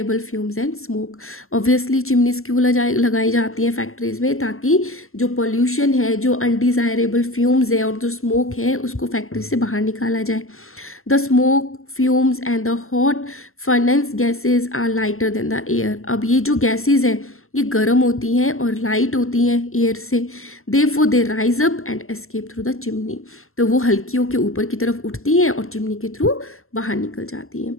fumes and smoke. Obviously chimneys क्यों लगाई जाती हैं फैक्ट्रीज़ में, ताकि जो पोल्यूशन है, जो अनडिज़ायरेबल फ्यूम्स है और जो स्मोक है उसको फैक्ट्री से बाहर निकाला जाए। The smoke, fumes and the hot furnace gases are lighter than the air. अब ये जो गैसेज हैं ये गर्म होती हैं और लाइट होती हैं एयर से, therefore they rise up and escape through the chimney. तो वो हल्कियों के ऊपर की तरफ उठती हैं और चिमनी के थ्रू बाहर निकल जाती हैं।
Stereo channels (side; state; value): right; late; 0.62 ms